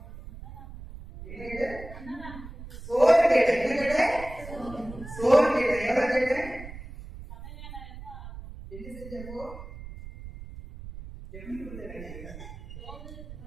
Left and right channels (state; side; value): noise; right; rumble, 13 dB below the sound